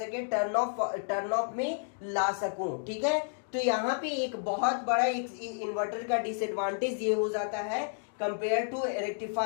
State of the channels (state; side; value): silent; right; digital silence